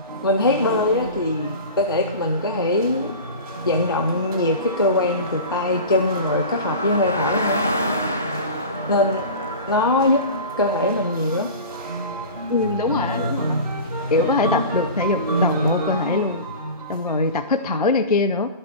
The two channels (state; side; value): inverted; both; correlation -0.33